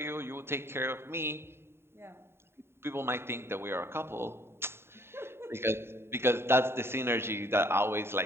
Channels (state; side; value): late; left; 0.12 ms